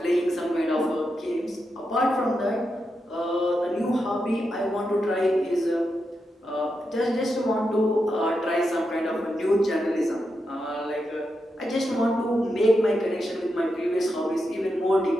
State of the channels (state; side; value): normal; both; correlation 0.86